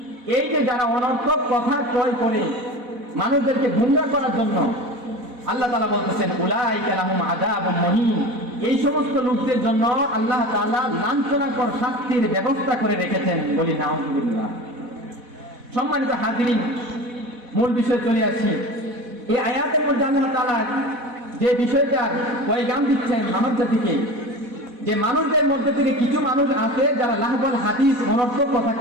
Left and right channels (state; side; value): late; left; 4.1 ms